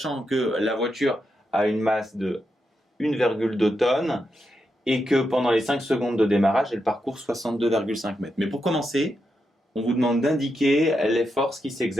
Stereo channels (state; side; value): normal; both; correlation 0.85